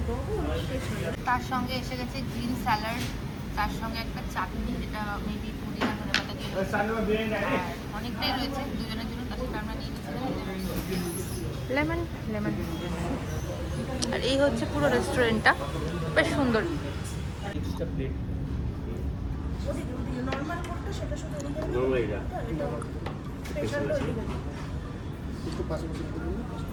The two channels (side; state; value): both; identical; correlation 1.00